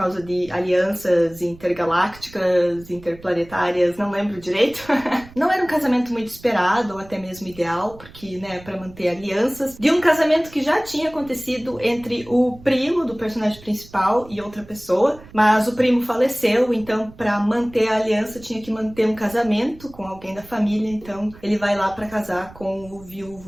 de alianças intergalácticas, interplanetárias, não lembro direito. Não era um casamento muito esperado ou até mesmo ideal, porque, né, para manter alianças, de um casamento que já tinha acontecido entre o primo do personagem principal e outra pessoa, mas o primo faleceu, então para manter a aliança tinha que manter um casamento com alguém da família, então ele vai lá para casar com o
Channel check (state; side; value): noise; right; rumble, 21 dB below the sound